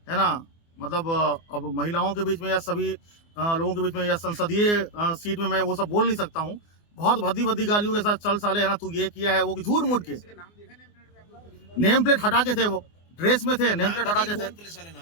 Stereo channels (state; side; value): late; right; 24 ms